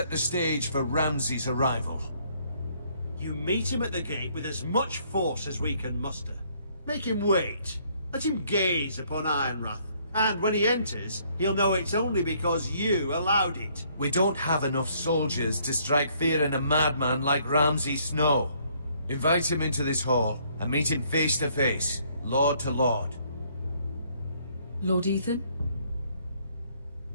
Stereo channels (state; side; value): inverted; both; correlation -0.65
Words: the stage for Ramsay's arrival. You meet him at the gate with as much force as we can muster. Make him wait. Let him gaze upon Ironrath. And when he enters, he'll know it's only because you allowed it. We don't have enough soldiers to strike fear in a madman like Ramsay Snow. Invite him into this hall, and meet him face to face, lord to lord. Lord Ethan?